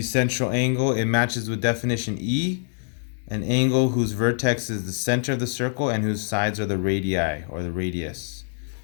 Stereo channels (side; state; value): right; silent; digital silence